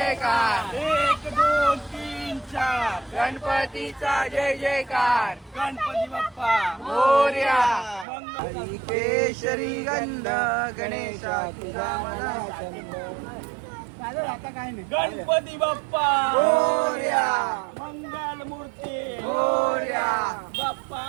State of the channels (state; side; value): drops out; left; at 8.1 s